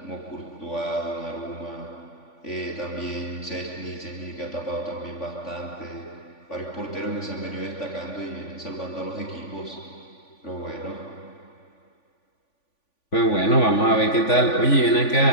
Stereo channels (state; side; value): late; right; 3.5 ms